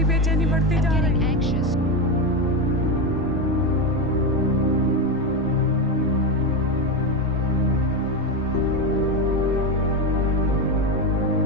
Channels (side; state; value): both; normal; correlation 0.14